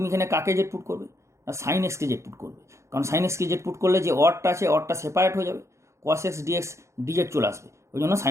এখানে কাকে জেড পুট করবে না সাইন এক্সকে জেড পুট করবে, কারণ সাইন এক্সকে জেড পুট করলে যে অডটা আছে অডটা সেপারেট হয়ে যাবে, কস এক্স ডিএক্স ডিজেড চলে আসবে, ওই জন্য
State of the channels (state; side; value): late; left; 0.14 ms